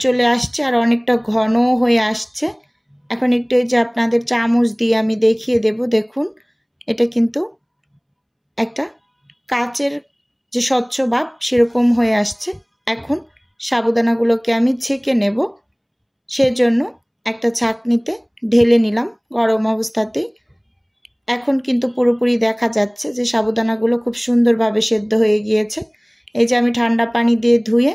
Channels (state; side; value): identical; both; correlation 1.00